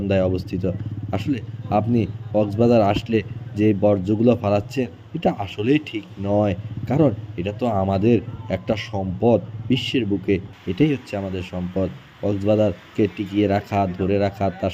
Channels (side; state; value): both; identical; correlation 1.00